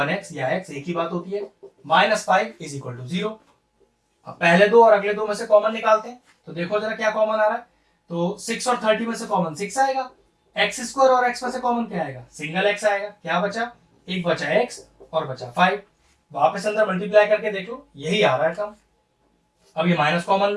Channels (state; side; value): identical; both; correlation 1.00